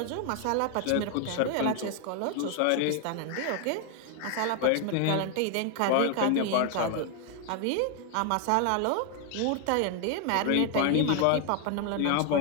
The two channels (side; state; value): both; different; correlation 0.00